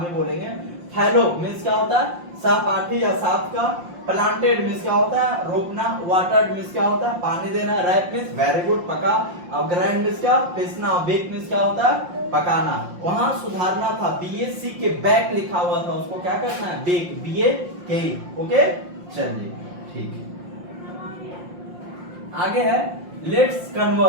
ही बोलेंगे। फैलो मीन्स क्या होता है? सहपाठी या साथ का। प्लांटेड मीन्स क्या होता है? रोपना। वाटर्ड मीन्स क्या होता है? पानी देना। राइप मीन्स वेरी गुड, पका। और ग्राइंड मीन्स क्या? पीसना। बेक मीन्स क्या होता है? पकाना। वहां सुधारना था, बीएससी के बैक लिखा हुआ था, उसको क्या करना है? बेक, बीए के। ओके, चलिए ठीक है। आगे है, लेट्स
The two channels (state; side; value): late; left; 5.7 ms